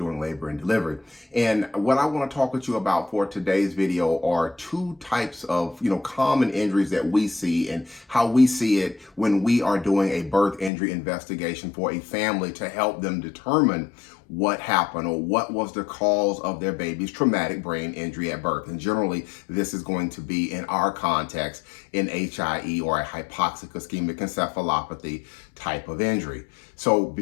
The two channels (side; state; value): right; drops out; at 10.7 s